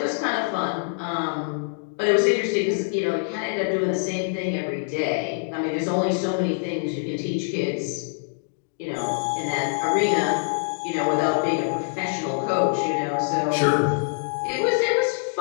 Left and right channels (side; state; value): right; silent; digital silence